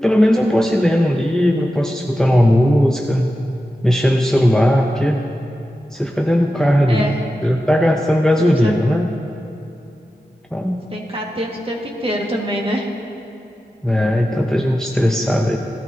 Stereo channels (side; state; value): both; normal; correlation 0.92